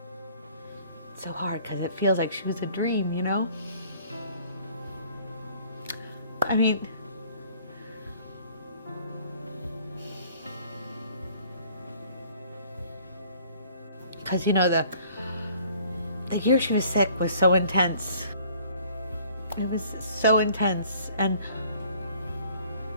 It's so hard because it feels like she was a dream, you know? I mean, because you know, the year she was sick was so intense. It was so intense.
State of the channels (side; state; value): both; inverted; correlation -0.56